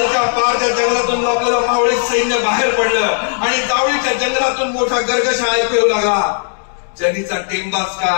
पारच्या जंगलातून आपल्याला मावळे सैन्य बाहेर पडलं आणि जावळीच्या जंगलातून मोठा गर्गशा ऐकू येऊ लागला. जनीचा टेंबाच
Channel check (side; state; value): right; silent; digital silence